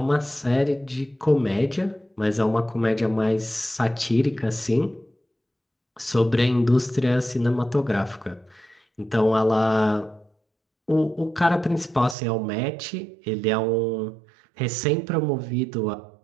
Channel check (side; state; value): left; drops out; at 12.2 s